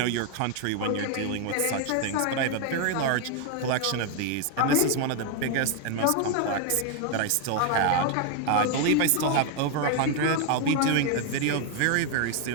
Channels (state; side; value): different; both; correlation 0.01